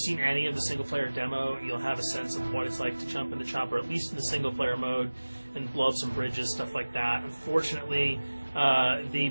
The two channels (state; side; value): inverted; both; correlation -1.00